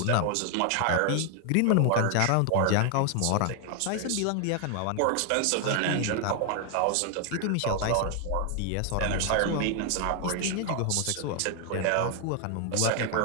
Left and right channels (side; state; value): both; different; correlation 0.00